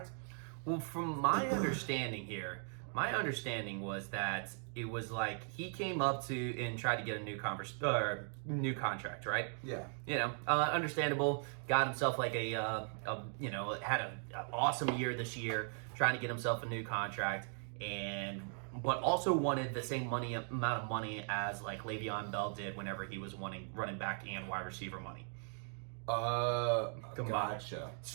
Well, from my understanding here, my understanding was that it was like he came up to and tried to get a new contract, right? Yeah. You know, understandable. Got himself like had an awesome year this year, trying to get himself a new contract, but also wanted the same amount of money as like Le'Veon Bell did whenever he was wanting running back and wide receiver money. Gotcha.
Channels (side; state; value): left; silent; 52 dB below the other